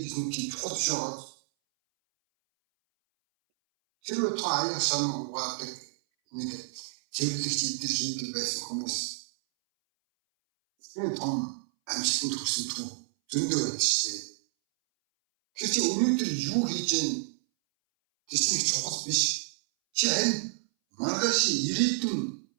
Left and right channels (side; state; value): left; silent; 58 dB below the other